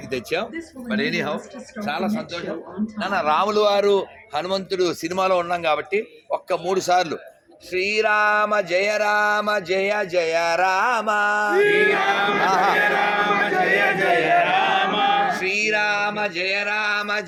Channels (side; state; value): both; identical; correlation 1.00